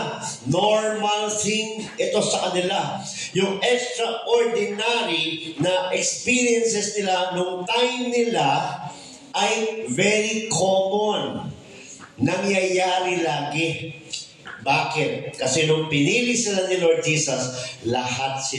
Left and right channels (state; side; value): identical; both; correlation 1.00